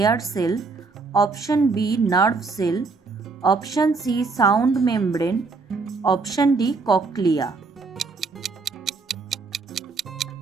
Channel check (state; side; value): quieter; left; 4.2 dB